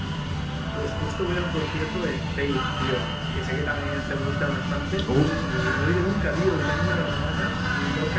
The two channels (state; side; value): identical; both; correlation 1.00